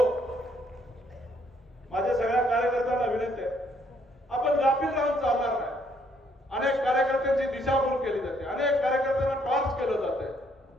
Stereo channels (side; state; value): both; normal; correlation 0.68